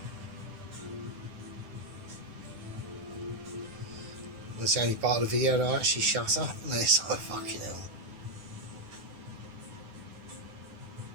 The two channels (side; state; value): left; late; 9.4 ms